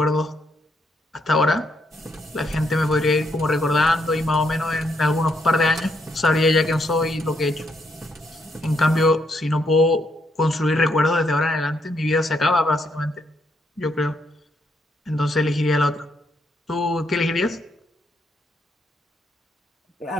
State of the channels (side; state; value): both; normal; correlation 0.76